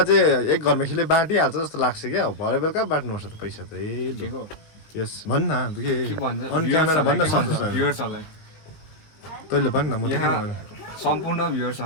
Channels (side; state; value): right; late; 19 ms